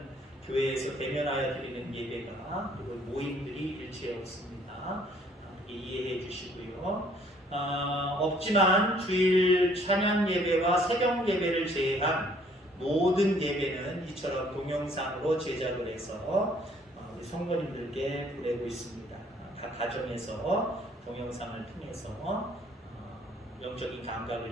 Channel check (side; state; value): both; normal; correlation 0.61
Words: 교회에서 대면하여 드리는 예배가, 그리고 모임들이 일체에 없습니다. 이해해 주시고요. 없지만 주일 찬양 예배와 새벽 예배를 제외한 모든 예배는 이처럼 동영상으로 제작을 해서 우리 성도님들께 보내고 있습니다. 각 가정에서 동영상을 통해서 영적인 감각을